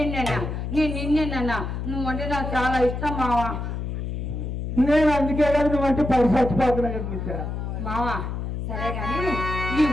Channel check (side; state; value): left; noise; hum, 4 dB below the sound